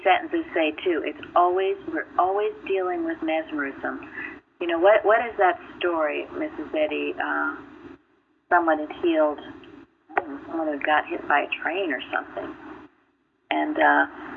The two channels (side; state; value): both; identical; correlation 1.00